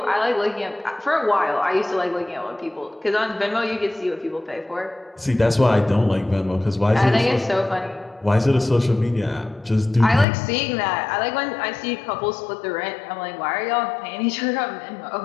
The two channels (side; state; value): right; drops out; at 10.2 s